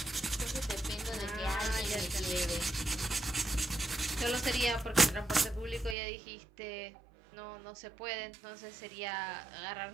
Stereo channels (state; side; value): drops out; left; at 6.0 s